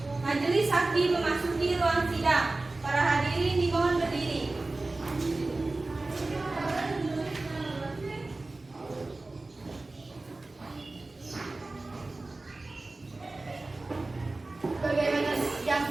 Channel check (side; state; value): left; quieter; 3.1 dB